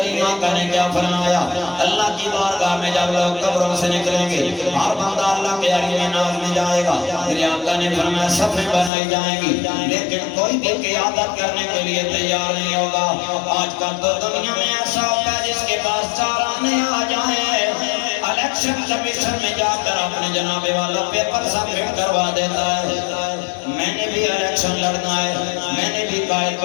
آقا نے کیا فرمایا اللہ کی بارگاہ میں جب لوگ قبروں سے نکلیں گے ہر بندہ اللہ کے علی ناز میں جائے گا میرے آقا نے فرمایا صفیں بنائی جائیں گی لیکن کوئی بھی قیادت کرنے کے لیے تیار نہیں ہوگا آج کل تو دنیا میں ایسا ہوتا ہے جس کے پاس چار آنے آ جائیں الیکشن کمیشن میں جا کر اپنے جناب والا پیپر سبمٹ کروا دیتا ہے میں نے بھی الیکشن لڑنا ہے میں نے بھی قائد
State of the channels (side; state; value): right; drops out; at 8.9 s